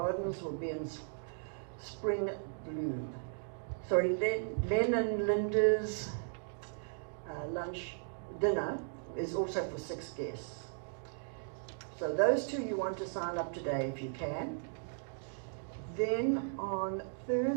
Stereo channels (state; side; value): silent; left; digital silence